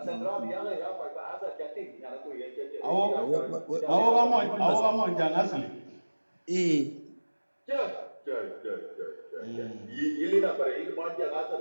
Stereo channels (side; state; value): both; inverted; correlation -1.00